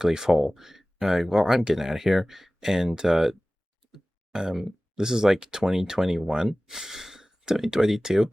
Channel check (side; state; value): both; normal; correlation 0.98